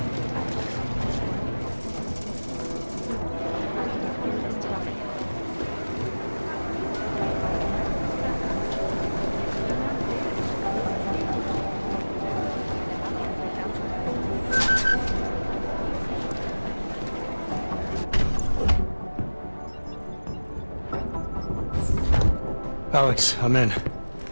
Alex, I'm in.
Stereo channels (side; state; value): both; inverted; correlation -1.00